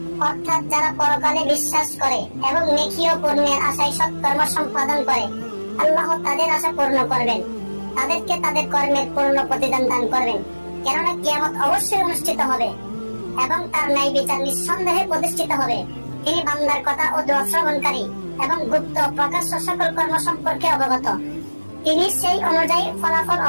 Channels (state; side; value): inverted; both; correlation -1.00